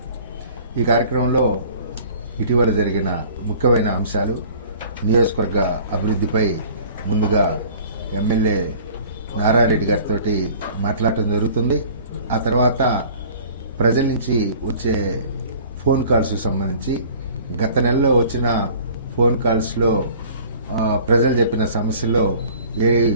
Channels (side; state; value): both; inverted; correlation -0.48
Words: ఈ కార్యక్రమంలో ఇటీవల జరిగిన ముఖ్యమైన అంశాలు, నియోజకవర్గ అభివృద్ధిపై ముందుగా ఎమ్మెల్యే నారాయణ రెడ్డి గారితో మాట్లాడటం జరుగుతుంది. ఆ తర్వాత ప్రజల నుంచి వచ్చే ఫోన్ కాల్స్కి సంబంధించి గత నెలలో వచ్చిన ఫోన్ కాల్స్లో ప్రజలు చెప్పిన సమస్యల్లో ఏవి